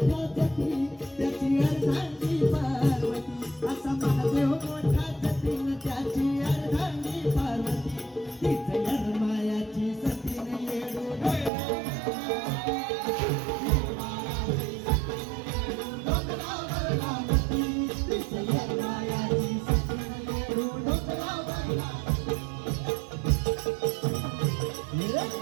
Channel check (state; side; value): drops out; left; at 11.5 s